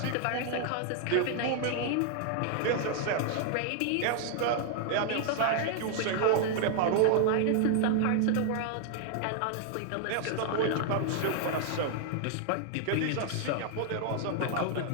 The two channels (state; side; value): different; both; correlation 0.00